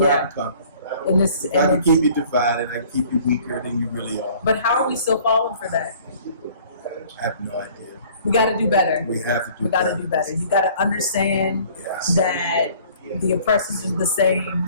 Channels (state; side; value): inverted; both; correlation -0.53